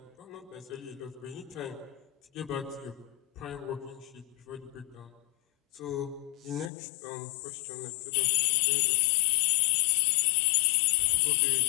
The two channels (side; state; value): right; drops out; at 6.7 s